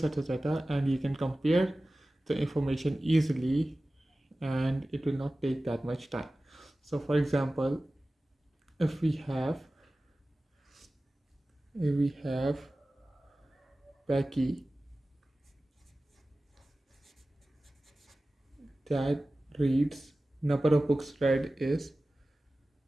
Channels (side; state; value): both; normal; correlation 0.96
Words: of data and you can compare the information easily and it will not take that much time. So for example, if we have Becky that reads number of books read is